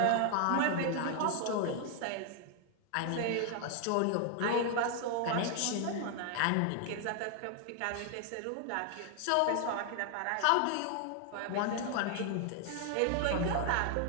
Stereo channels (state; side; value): different; both; correlation 0.00